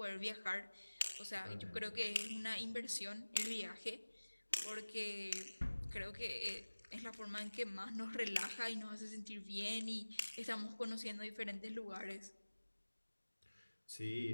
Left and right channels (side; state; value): both; inverted; correlation -1.00